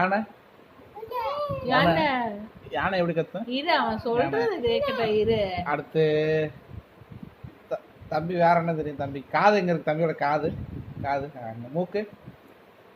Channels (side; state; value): both; identical; correlation 1.00